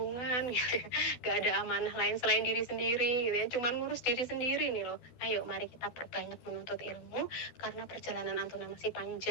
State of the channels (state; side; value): late; right; 12 ms